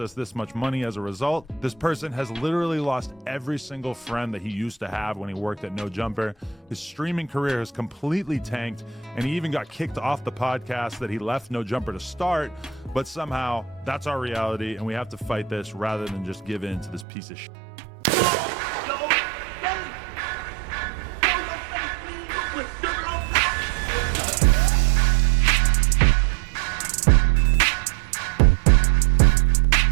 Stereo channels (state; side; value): drops out; left; at 17.1 s